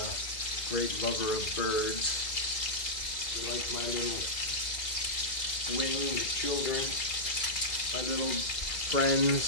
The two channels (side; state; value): right; late; 2.2 ms